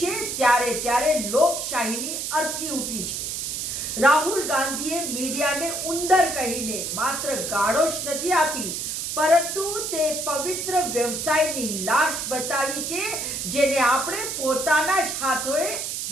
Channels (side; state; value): right; noise; hiss, 3 dB below the sound